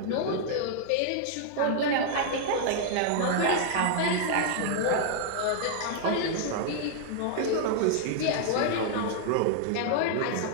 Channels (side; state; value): both; different; correlation -0.01